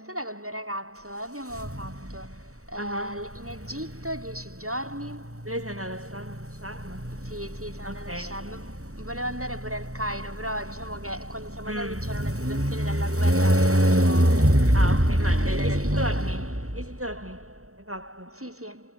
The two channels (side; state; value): left; late; 0.64 ms